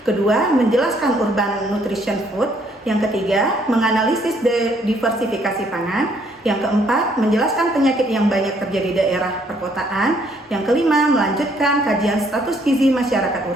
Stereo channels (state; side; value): normal; both; correlation 0.66